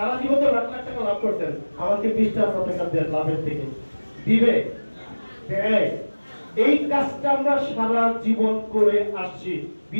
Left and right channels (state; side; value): inverted; both; correlation -1.00